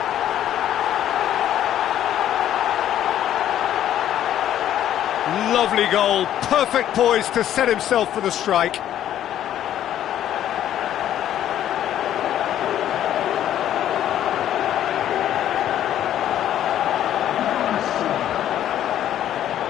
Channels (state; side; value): quieter; right; 11.4 dB